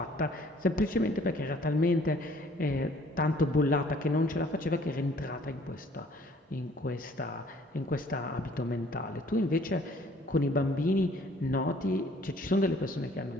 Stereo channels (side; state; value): both; normal; correlation 0.57